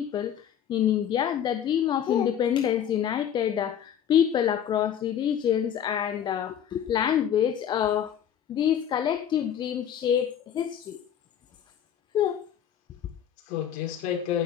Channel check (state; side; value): quieter; right; 9.4 dB